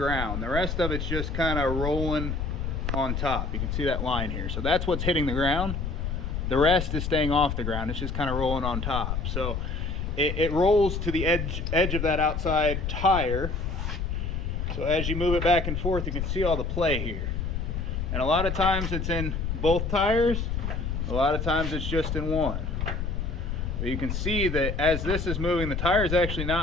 The rest of it's just kind of rolling on top. You can see that line here. So that's what's hitting the ground. The rest is staying off the ground. It's just kind of rolling on top. So it rolls to the edge of that outside tire. So as you move it back and forth, you can see all the play here. And a lot of times it's in both tires. A lot of times it's just in one. But you can see that as this is moving, the tire is actually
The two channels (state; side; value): noise; left; rumble, 2 dB below the sound